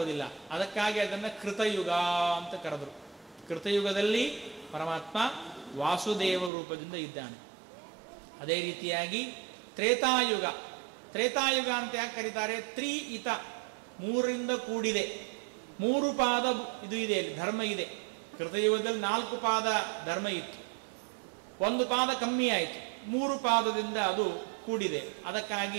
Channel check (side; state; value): left; drops out; at 6.5 s